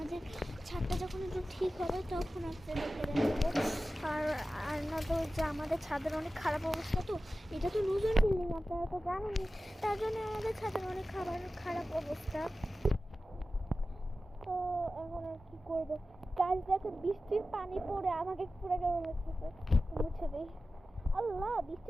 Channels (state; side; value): normal; both; correlation 0.95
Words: ছাদটা যখন একটু ঠিক হবে তখন আপনাদেরকে দেখাবো। আর না তো যে আমাদের ছাদের অনেক খারাপ অবস্থা, তো এটা তো নতুন বিল্ডিং, আপনারা তো জানেনই, তার জন্য আমাদের ছাদের অনেক খারাপ অবস্থা। তো এখন আর কি করবো, গাছ দেখে বৃষ্টির পানি পড়ে আমাকে পুরো কেমন লাগতেছে, মুছে দিই। আল্লাহ,